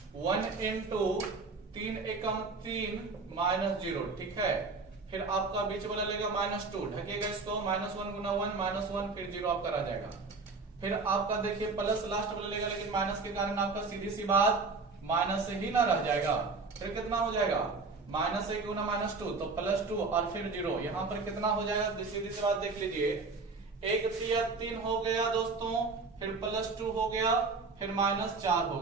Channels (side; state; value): left; quieter; 4.0 dB